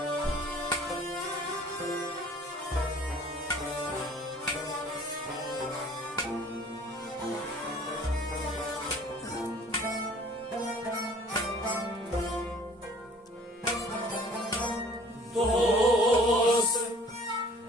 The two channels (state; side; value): normal; both; correlation 0.52